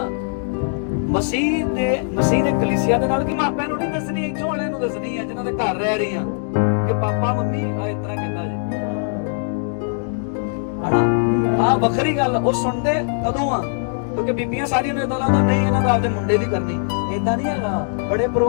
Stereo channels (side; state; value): right; silent; digital silence